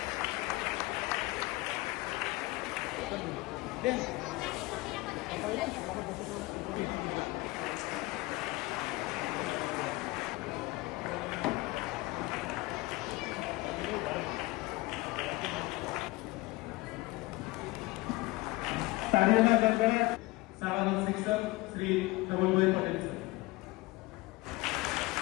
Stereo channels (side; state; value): right; quieter; 21.4 dB